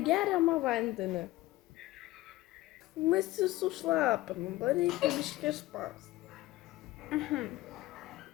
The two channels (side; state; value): right; quieter; 17.7 dB